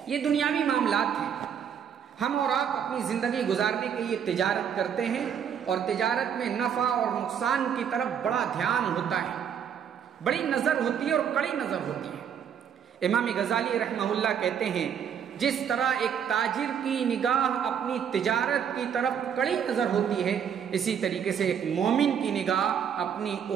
یہ دنیاوی معاملات ہیں، ہم اور آپ اپنی زندگی گزارنے کے لیے تجارت کرتے ہیں اور تجارت میں نفع اور نقصان کی طرف بڑا دھیان ہوتا ہے، بڑی نظر ہوتی ہے اور کڑی نظر ہوتی ہے۔ امام غزالی رحمہ اللہ کہتے ہیں جس طرح ایک تاجر کی نگاہ اپنی تجارت کی طرف کڑی نظر ہوتی ہے، اسی طریقے سے ایک مومن کی نگاہ اپنی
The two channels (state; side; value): quieter; left; 8.1 dB